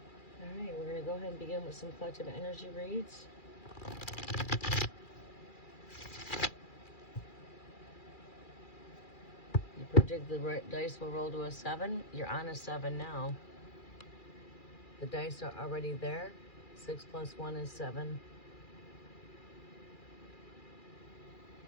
right, we're going to go ahead and begin with some collective energy reads. You predict the dice will roll to a 7. You're on a 7 now. The dice are already there. 6 plus 1 is 7.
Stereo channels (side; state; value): right; late; 2.4 ms